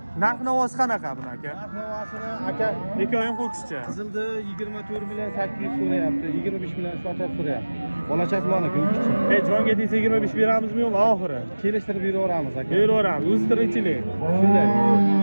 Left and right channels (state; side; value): inverted; both; correlation -1.00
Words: Narx-navosi qanaqa buni aka? Narx-navosini aka Ikkovi ham ho'kizcha. qizildi 24 million 800 so'rayapti, 25 million sotib so'rayapti. Bolachasi maniki u kichik. Jonga tegsa 25 beramizmi yo'qmi oxiri? Kelishtirib beraveramiz aka. Beraveramiz. O'zi tirikchilik. Shunday.